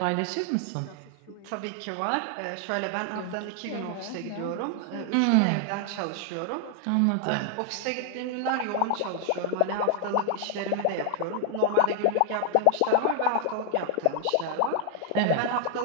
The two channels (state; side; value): different; both; correlation 0.00